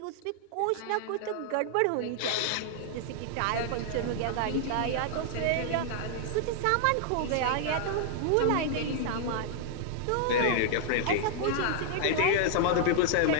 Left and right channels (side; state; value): both; different; correlation -0.01